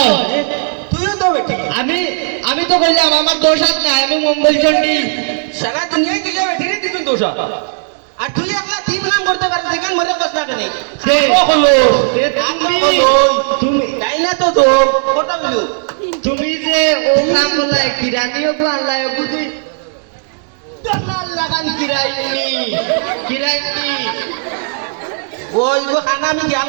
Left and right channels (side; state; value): left; silent; digital silence